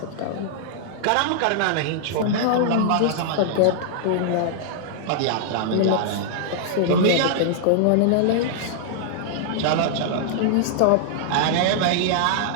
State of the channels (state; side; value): different; both; correlation -0.01